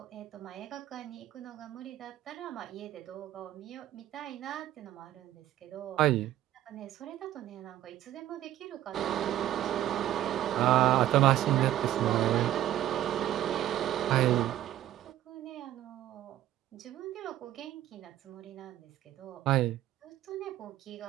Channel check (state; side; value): quieter; left; 13.2 dB